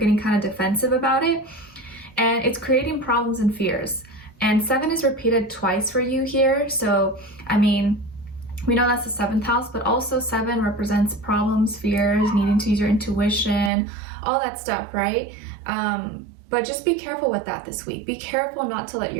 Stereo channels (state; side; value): drops out; left; at 13.7 s